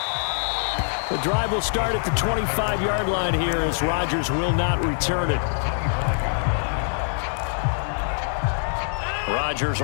The drive will start at the 25-yard line here as Rodgers will not return it. Rodgers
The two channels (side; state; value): right; silent; digital silence